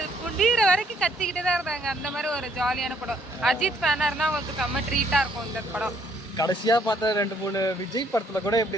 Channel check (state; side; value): normal; both; correlation 0.66